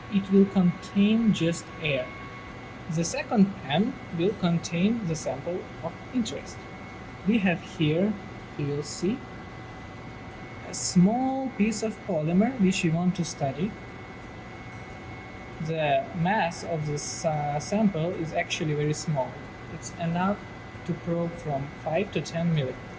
It will contain just air. The second pan will contain the sample of interest. We have here, you will see, a small piece of polymer which we want to study. The mass of this sample is actually very small. It's enough to probe from 5 to 10 millimeters.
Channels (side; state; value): both; identical; correlation 1.00